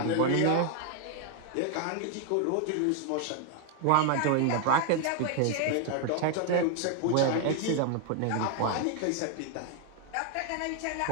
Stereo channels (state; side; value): different; both; correlation 0.00